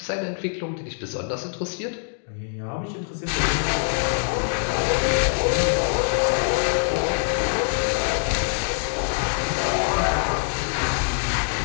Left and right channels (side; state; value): right; silent; digital silence